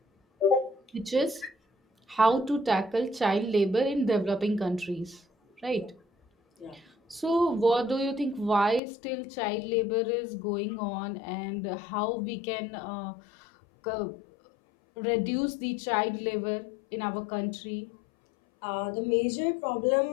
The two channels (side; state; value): right; drops out; at 8.8 s